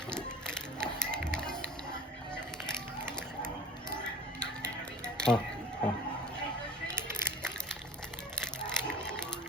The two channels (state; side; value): normal; both; correlation 0.42